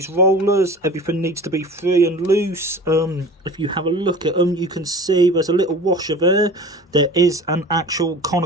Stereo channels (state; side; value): normal; both; correlation 0.39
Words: rollers, everything needs to be free and loose. If you have a look at them, you can see there's a little washer there. There is an actual